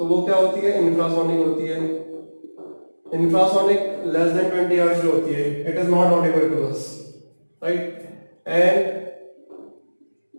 वो क्या होती है? इंफ्रासोनिक होती है. इंफ्रासोनिक लेस देन 20 हर्ट्ज जो होती है, it is not audible to us. Right, and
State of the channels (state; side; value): inverted; both; correlation -1.00